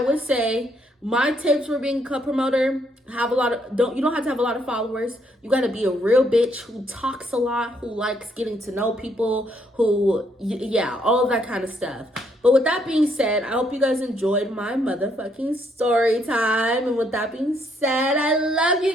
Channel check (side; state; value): both; normal; correlation 0.72